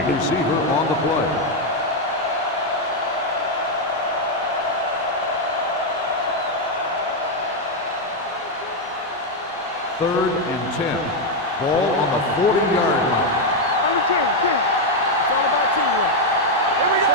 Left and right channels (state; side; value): normal; both; correlation 0.02